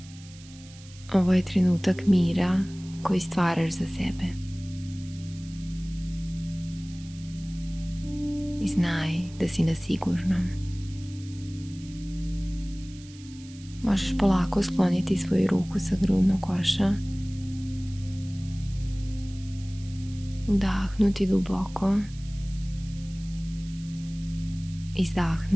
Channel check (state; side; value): noise; right; hiss, 21 dB below the sound